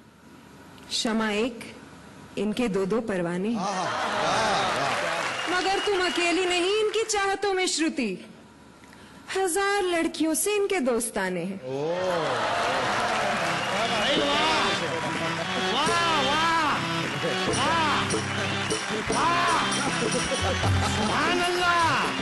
शमा एक, इनके दो दो परवाने हैं। मगर तुम अकेली नहीं इनकी चाहतों में श्रुति, 1000 लड़कियों से इनके दोस्ताने हैं। सुभान अल्लाह,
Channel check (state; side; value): identical; both; correlation 1.00